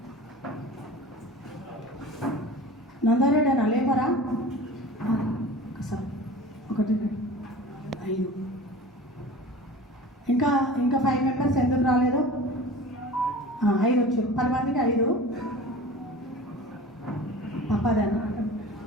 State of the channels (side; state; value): both; normal; correlation 0.38